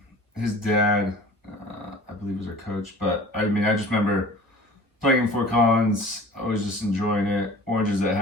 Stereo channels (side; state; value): both; normal; correlation 0.43